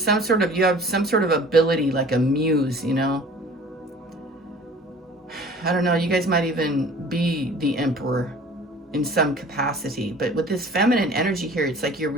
some sort of ability, like a muse, you know. I don't know, you guys might even be the emperor in some capacity, but with this feminine energy here, it's like you're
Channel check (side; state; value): both; normal; correlation 0.46